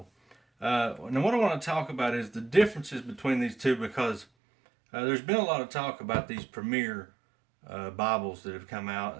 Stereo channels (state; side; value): drops out; left; at 4.2 s